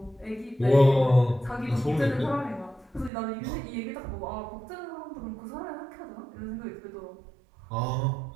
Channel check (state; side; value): drops out; left; at 3.1 s